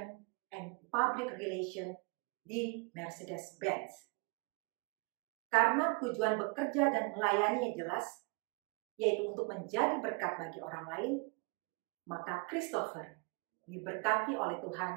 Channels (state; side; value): quieter; left; 31.2 dB